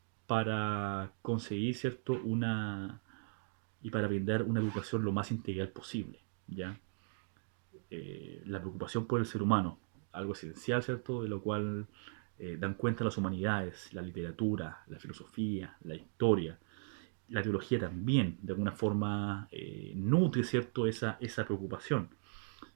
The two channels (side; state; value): left; silent; digital silence